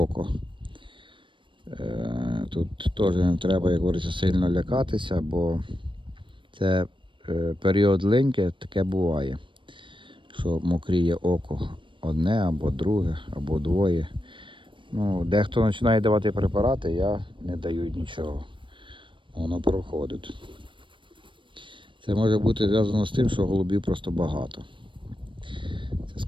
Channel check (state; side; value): late; left; 0.24 ms